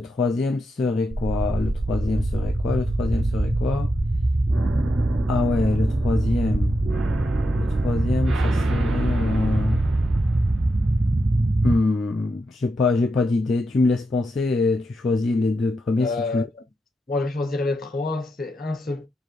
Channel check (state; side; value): normal; both; correlation 0.85